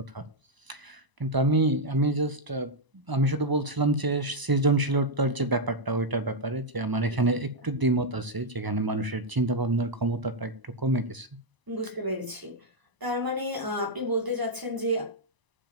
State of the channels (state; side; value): late; left; 1.0 ms